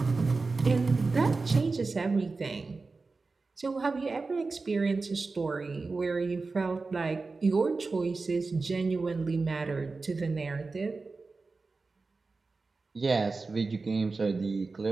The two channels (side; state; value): left; quieter; 3.9 dB